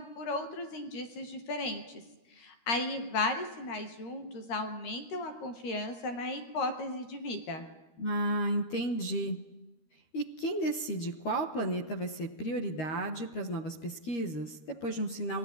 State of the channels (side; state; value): right; late; 13 ms